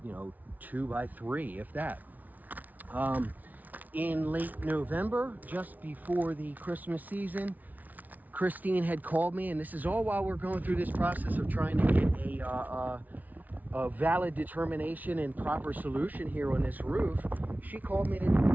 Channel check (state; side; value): late; left; 0.077 ms